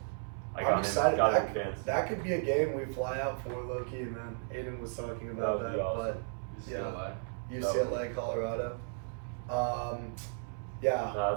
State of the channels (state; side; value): silent; left; 55 dB below the other